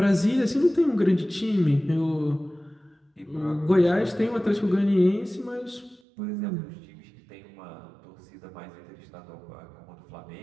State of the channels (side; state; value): left; drops out; at 6.0 s